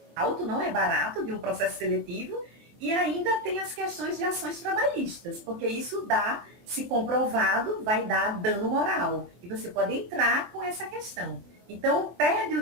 alto, não é barato, de um processo seletivo, e ainda tem as questões de ações trabalhistas, porque isso dá, se comprovado, vai dar dano moral. E você pode entrar com essa questão. Então, perde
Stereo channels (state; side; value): late; left; 24 ms